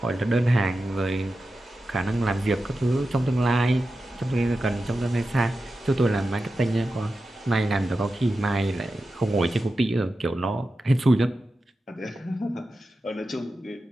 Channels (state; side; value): normal; both; correlation 0.92